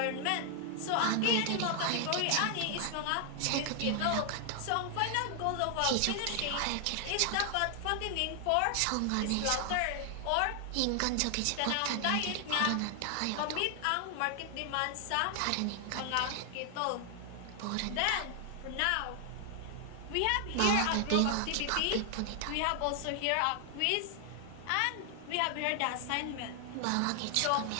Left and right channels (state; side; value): different; both; correlation 0.00